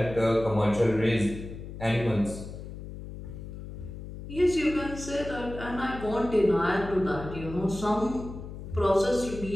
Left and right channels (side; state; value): left; noise; hum, 11 dB below the sound